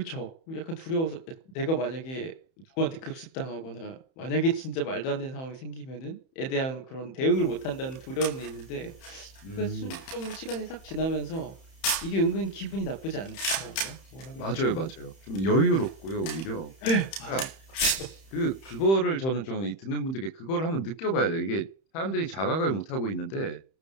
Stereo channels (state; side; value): late; right; 31 ms